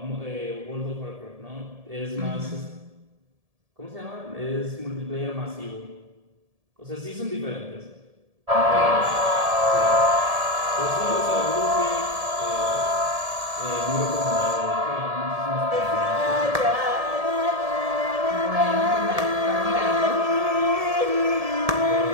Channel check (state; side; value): late; left; 1.7 ms